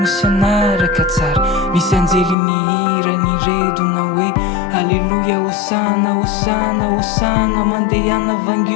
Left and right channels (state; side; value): drops out; right; at 2.4 s